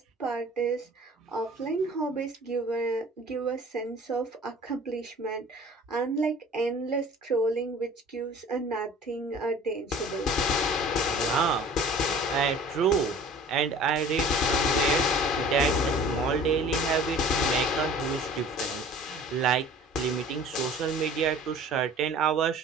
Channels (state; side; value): normal; both; correlation 0.46